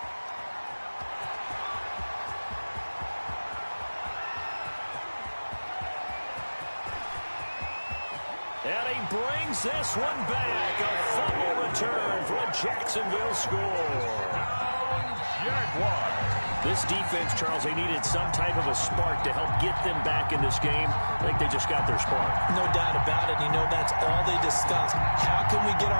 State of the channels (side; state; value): both; inverted; correlation -1.00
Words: And he brings this one back. A fumble return for a Jacksonville score. Jaguars. This defense, Charles, they needed some type of a spark to help get them back in this game. I think they just got their spark. No doubt about it. You know, that's all they discussed. How can we get